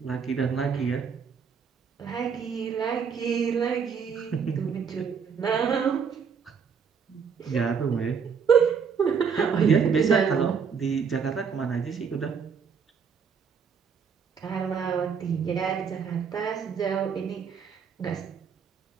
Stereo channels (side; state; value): left; quieter; 6.5 dB